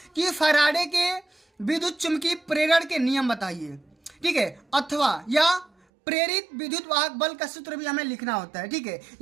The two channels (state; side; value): drops out; left; at 5.7 s